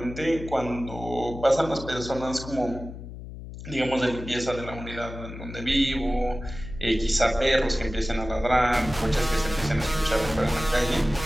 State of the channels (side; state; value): left; noise; hum, 12 dB below the sound